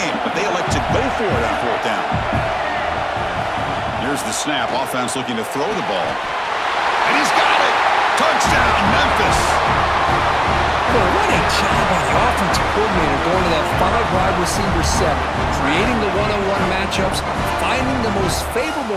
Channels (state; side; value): identical; both; correlation 1.00